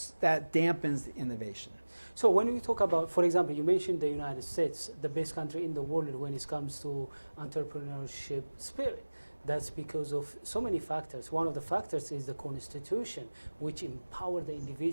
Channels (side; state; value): both; inverted; correlation -1.00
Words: the innovation. So when we talk about, for example, you mentioned the United States, the best country in the world when it comes to entrepreneurship spirit. That's because of so many factors. One of the factors is the Constitution, which empower the